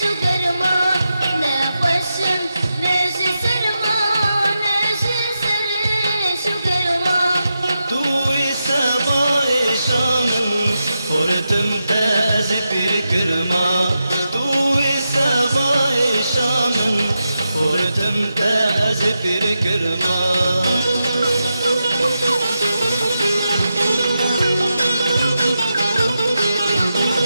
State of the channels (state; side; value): inverted; both; correlation -0.88